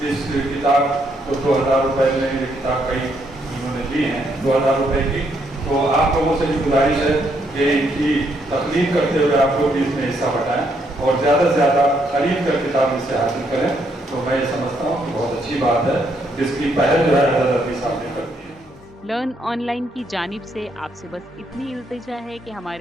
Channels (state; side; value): normal; both; correlation 0.74